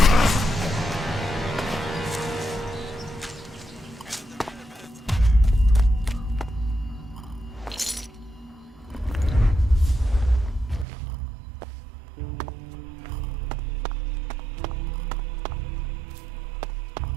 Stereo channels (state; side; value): drops out; left; at 10.9 s